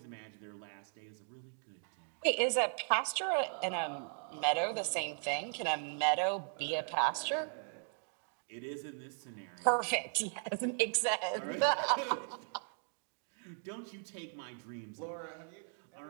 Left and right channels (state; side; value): silent; left; 53 dB below the other